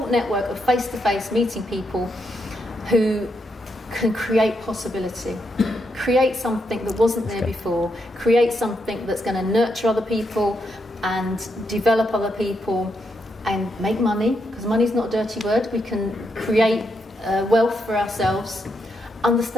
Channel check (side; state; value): both; normal; correlation 0.80